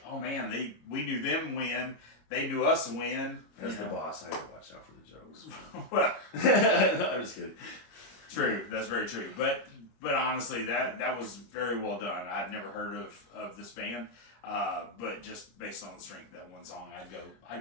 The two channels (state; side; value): late; right; 26 ms